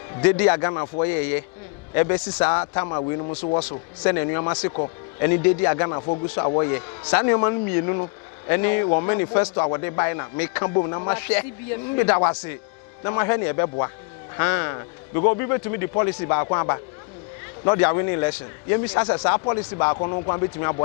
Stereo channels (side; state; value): right; quieter; 32.8 dB